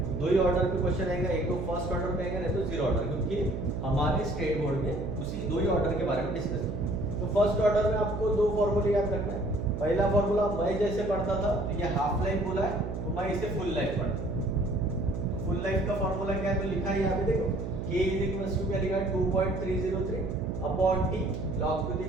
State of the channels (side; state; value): right; noise; hum, 5 dB below the sound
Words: दो ही ऑर्डर पे क्वेश्चन आएगा, एक तो फर्स्ट ऑर्डर पे आएगा, नहीं तो जीरो ऑर्डर, क्योंकि हमारे स्टेट बोर्ड में उसी दो ही ऑर्डर के बारे में डिस्कस किया। तो फर्स्ट ऑर्डर में आपको दो फॉर्मूले याद रखना है। पहला फॉर्मूला मैं जैसे पढ़ता था, तो ये हाफ लाइफ बोला है, तो मैं इसे फुल लाइफ पढ़ता। तो फुल लाइफ का फॉर्मूला क्या है, तो लिखा है यहाँ पे देखो, K = क्या लिखा है, 2.303 upon T log to the